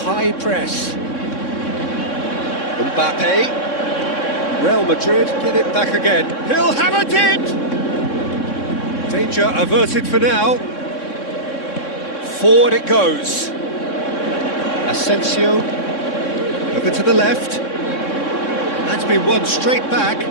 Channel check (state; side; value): late; right; 3.6 ms